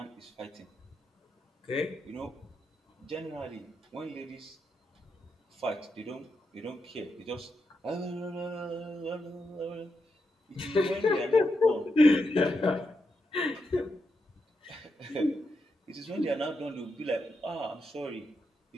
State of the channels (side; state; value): both; normal; correlation 0.84